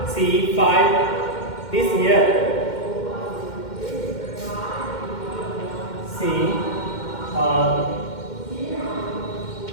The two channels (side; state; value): right; late; 2.1 ms